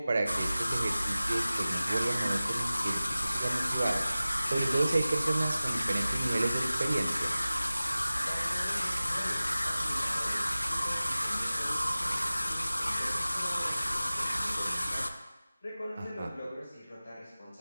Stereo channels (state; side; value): inverted; both; correlation -0.97